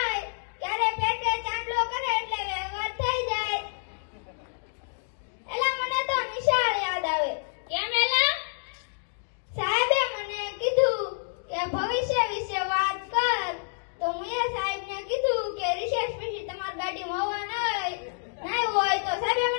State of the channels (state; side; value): silent; right; digital silence